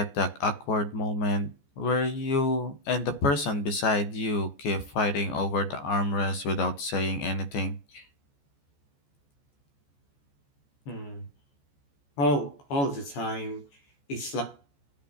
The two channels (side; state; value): right; late; 14 ms